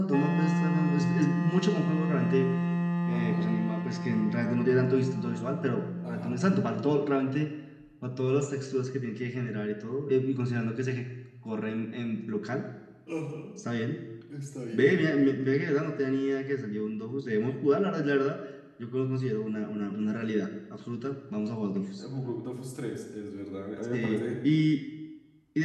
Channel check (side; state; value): both; identical; correlation 1.00